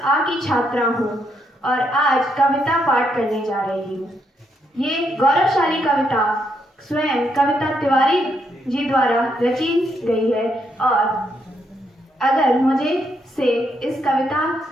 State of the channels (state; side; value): normal; both; correlation 0.77